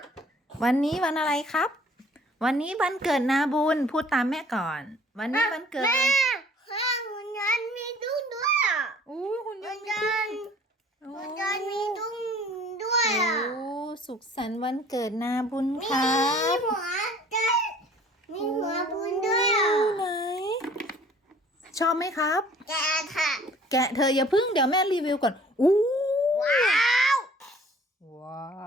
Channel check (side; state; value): both; normal; correlation 0.53